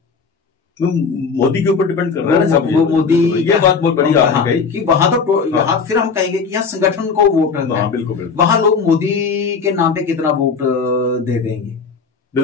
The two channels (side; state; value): right; quieter; 5.3 dB